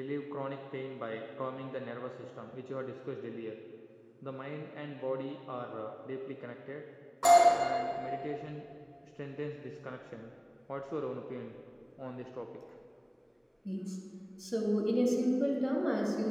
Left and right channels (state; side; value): identical; both; correlation 1.00